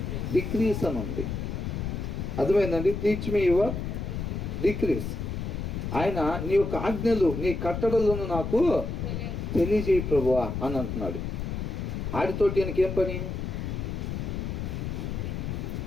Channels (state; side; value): noise; left; rumble, 4 dB below the sound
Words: డిక్రీస్ అని ఉంది. అర్థమైందండి? Teach me your decrease. ఆయన నీ యొక్క ఆజ్ఞలు, నీ కట్టడలను నాకు తెలియజేయి ప్రభువా అని అంటున్నాడు. ఆడితోటి ఆయనకేం పని?